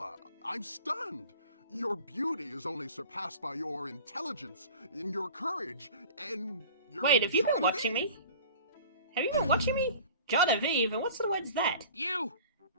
I'm stunned. Your beauty is only surpassed by your intelligence, and your courage, and your... Wait, have you been watching me? Have you been watching me? Genevieve, and what sort of word's that? You!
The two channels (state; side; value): inverted; both; correlation -0.42